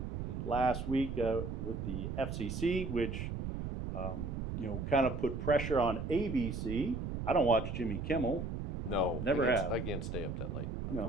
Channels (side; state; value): right; noise; rumble, 4 dB below the sound